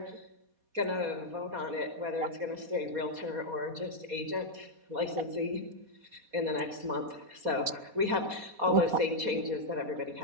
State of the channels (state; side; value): late; left; 4.2 ms